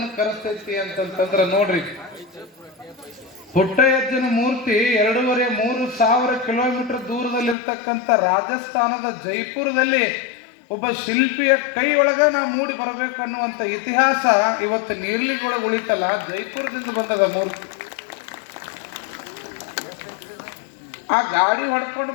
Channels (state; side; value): drops out; right; at 7.6 s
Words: ಕರೆಸ್ತೈತಿ ಅಂತಂತಂದ್ರ ನೋಡ್ರಿ. ಪುಟ್ಟಯ್ಯಜ್ಜನ ಮೂರ್ತಿ 2,500-3,000 ಕಿಲೋಮೀಟರ್ ದೂರದಲ್ಲಿರ್ತಕ್ಕಂಥ ರಾಜಸ್ಥಾನದ ಜೈಪುರದಲ್ಲಿ ಒಬ್ಬ ಶಿಲ್ಪಿಯ ಕೈ ಒಳಗ ನಾವು ಮೂಡಿ ಬರ್ಬೇಕನ್ನುವಂತ ಇತಿಹಾಸ ಇವತ್ತು ನೀರ್ಲಿಗೊಳಗೆ ಉಳಿತಲ್ಲ, ಜೈಪುರದಿಂದ ಬಂದದ ಮೂರ್ತಿ. ಆ ಗಾಡಿ ಹೊಡ್ಕೊಂಡು